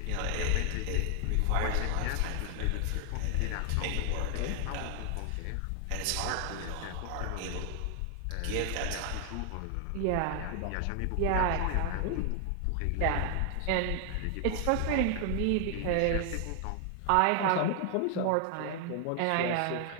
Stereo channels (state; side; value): different; both; correlation 0.00